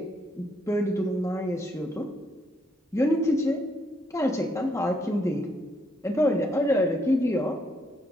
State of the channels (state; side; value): normal; both; correlation 0.74